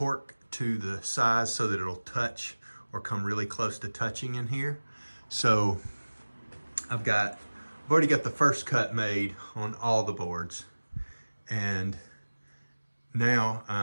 to the size so that it'll touch or come really close to touching in here. So I've already got the first cut made on all the boards, and now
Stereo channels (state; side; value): inverted; both; correlation -1.00